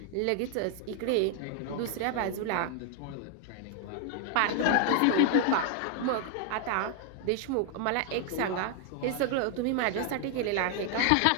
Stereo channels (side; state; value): both; different; correlation 0.00